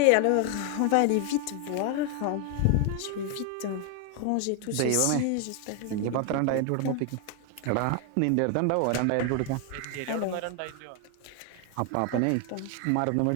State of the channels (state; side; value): different; both; correlation 0.01